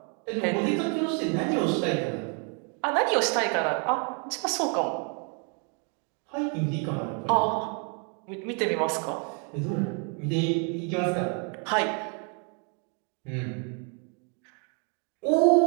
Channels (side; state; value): left; quieter; 38.6 dB